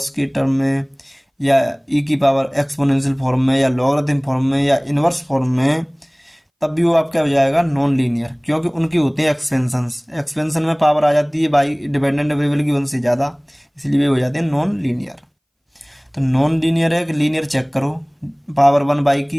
के टर्म में, या ई की पावर एक्सपोनेंशियल फॉर्म में, या लॉगरिथम फॉर्म में, या इनवर्स फॉर्म में, तब भी वो आपका हो जाएगा नॉन लीनियर, क्योंकि उनकी होते हैं एक्सपेंशंस। एक्सपेंशन में पावर आ जाती है बाई डिपेंडेंट वेरिएबल की 1 से ज़्यादा, इसलिए वे हो जाते हैं नॉन लीनियर। तो नॉन लीनियर है कि लीनियर चेक करो, पावर 1 बाई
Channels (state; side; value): identical; both; correlation 1.00